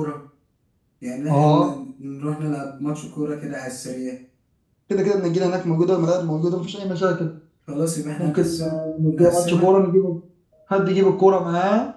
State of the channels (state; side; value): identical; both; correlation 1.00